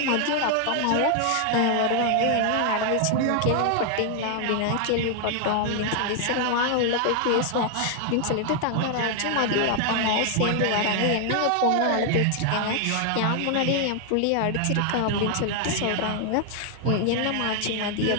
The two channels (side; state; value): both; different; correlation 0.00